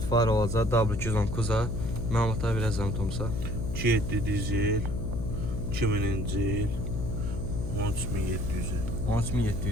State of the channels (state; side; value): noise; left; hum, 3 dB below the sound